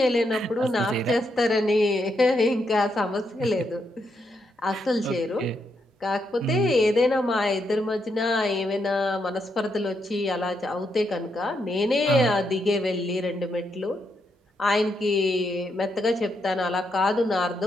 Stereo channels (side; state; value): both; normal; correlation 0.80